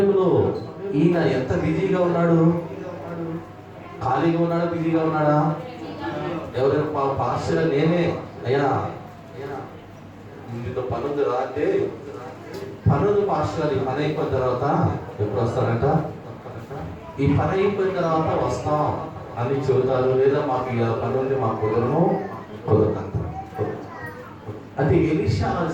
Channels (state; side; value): identical; both; correlation 1.00